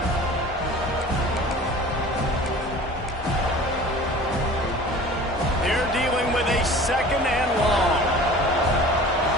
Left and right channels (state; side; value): normal; both; correlation 0.43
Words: They're dealing with a 2nd and